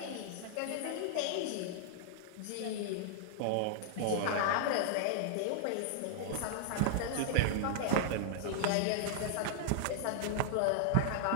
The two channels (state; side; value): different; both; correlation -0.01